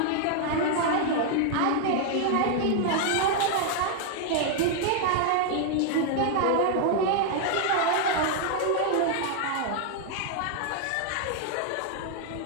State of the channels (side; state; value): both; different; correlation 0.00